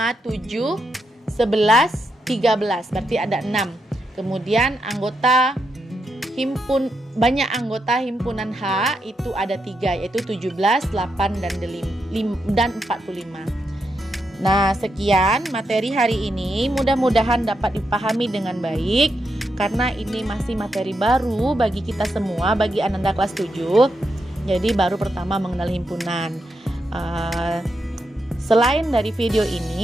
7, 11, 13. Berarti ada 6. Kemudian banyak anggota himpunan H itu ada 3, yaitu 17, 8 dan 45. Nah, sekian materi hari ini. Mudah-mudahan dapat dipahami dengan baik karena ini masih materi baru bagi kita semua, bagi Ananda kelas 7. Jadi baru pertama mengenal himpunan. Selain dari video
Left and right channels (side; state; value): both; normal; correlation 0.83